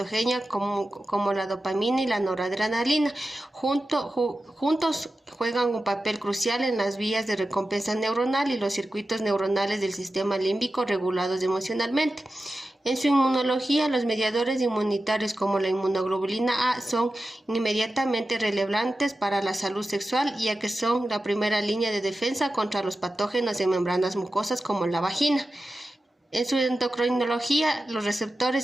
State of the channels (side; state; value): both; normal; correlation 0.93